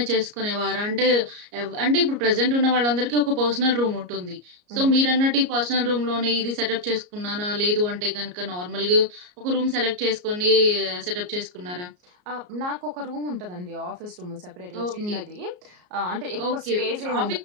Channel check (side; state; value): left; late; 34 ms